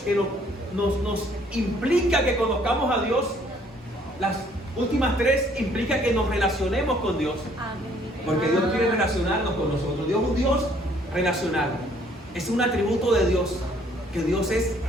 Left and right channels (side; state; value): both; normal; correlation 0.62